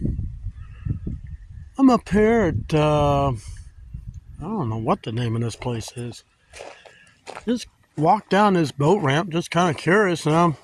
I'm up here at, I don't know what the name of this place is. Just walked down this boat ramp, just kind of curious. And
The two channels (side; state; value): both; identical; correlation 1.00